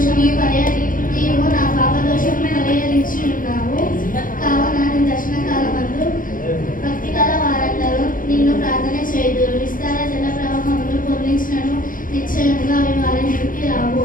నీవు నా పాప దోషమును పరిహరించి ఉన్నావు. కావున నీ దర్శన కాలమందు భక్తిగల వారందరూ నిన్ను ప్రార్థన చేయుదురు. విస్తార జల ప్రవాహములు పొర్లించినను నిశ్చయముగా అవి వారి మీదకి రావు.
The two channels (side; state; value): right; late; 0.40 ms